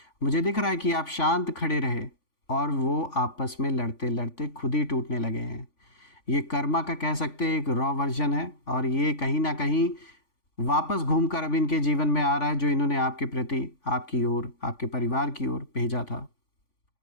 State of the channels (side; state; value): right; late; 3.5 ms